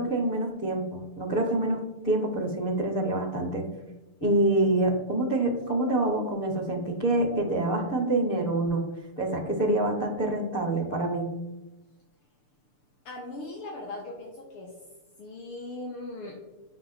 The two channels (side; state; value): right; late; 6.8 ms